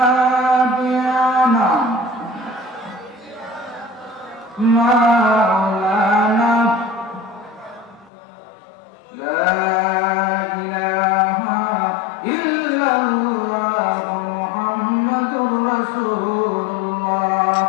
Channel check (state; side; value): drops out; right; at 8.1 s